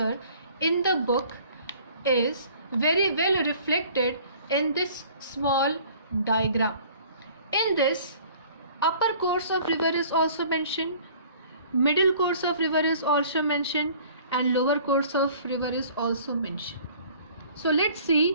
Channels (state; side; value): inverted; both; correlation -0.51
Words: in the book is very well reflected in this small diagram. In this, upper course of river is also mentioned, middle course of river is also mentioned, and lower course of river is also mentioned. So let's